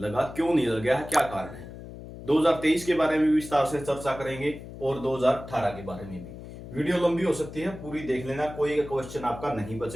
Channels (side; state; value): left; noise; hum, 13 dB below the sound